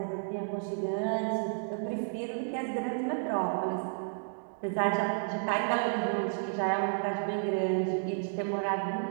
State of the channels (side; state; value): left; silent; digital silence